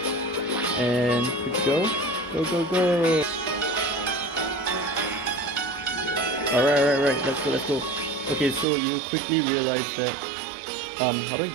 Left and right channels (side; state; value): left; drops out; at 8.7 s